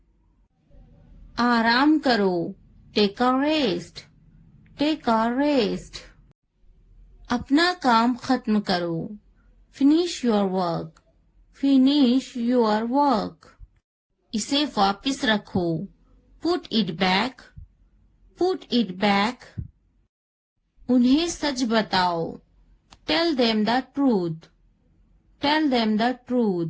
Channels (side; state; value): both; identical; correlation 1.00